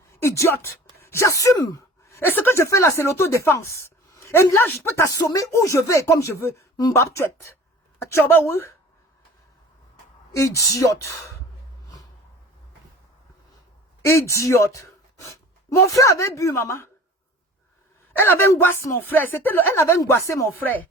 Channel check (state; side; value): normal; both; correlation 0.43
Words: Idiote. J'assume. Et ce que je fais là, c'est l'autodéfense. Et là, je peux t'assommer où je veux et comme je veux. Mbap tuet. Atchoba ou? Idiote. Idiote. Mon frère avait bu, maman. Elle avait angoissé mon frère. Elle avait angoissé mon frère.